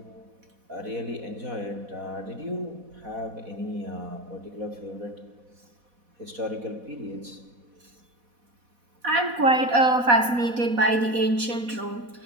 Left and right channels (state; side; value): late; left; 4.1 ms